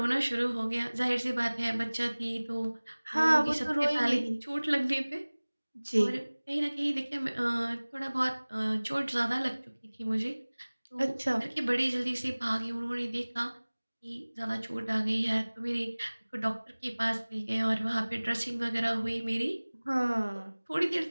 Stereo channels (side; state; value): both; inverted; correlation -1.00